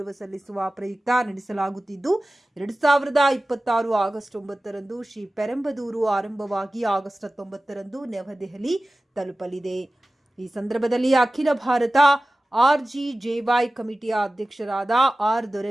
ಸಲ್ಲಿಸುವ ಪ್ರಯುಕ್ತ ನಡೆಸಲಾಗುತ್ತಿದ್ದು 2026 ಆಗಸ್ಟ್ 9ರಂದು ಶ್ರೀ ಪೆರಂಬದೂರು ಆರಂಭವಾಗಿ ಆಗಸ್ಟ್ 19ರಂದು ನವದೆಹಲಿ ತಲುಪಲಿದೆ. ಈ ಸಂದರ್ಭದಲ್ಲಿ ಅಖಿಲ ಭಾರತ RGJY ಕಮಿಟಿಯ ಅಧ್ಯಕ್ಷರಾದ ಆರ್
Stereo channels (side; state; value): both; normal; correlation 0.96